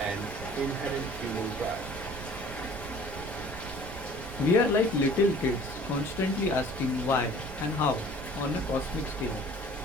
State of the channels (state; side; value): noise; right; rumble, 12 dB below the sound